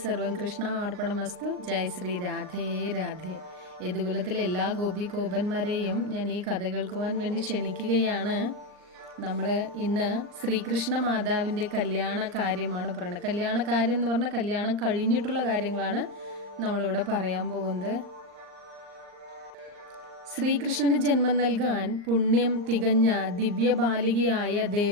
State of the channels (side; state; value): left; late; 39 ms